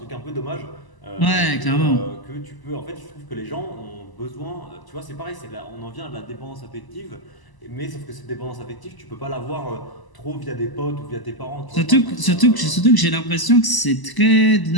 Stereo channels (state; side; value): late; right; 1.0 ms